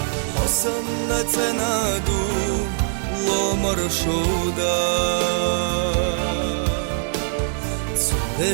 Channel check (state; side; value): silent; left; digital silence